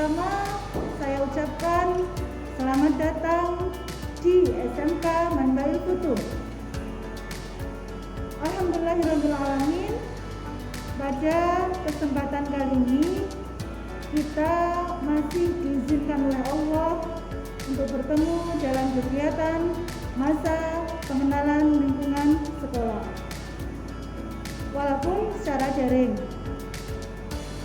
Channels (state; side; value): identical; both; correlation 1.00